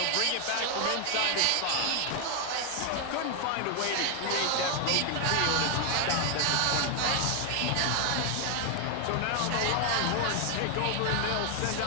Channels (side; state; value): both; different; correlation 0.00